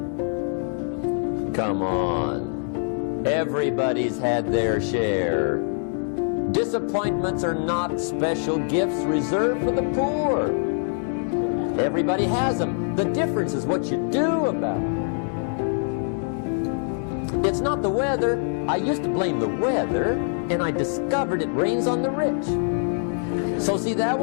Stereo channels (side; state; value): right; silent; 62 dB below the other